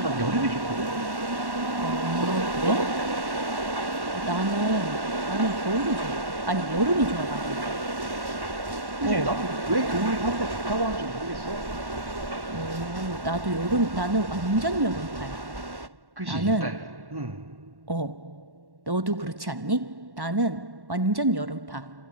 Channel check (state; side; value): late; left; 1.1 ms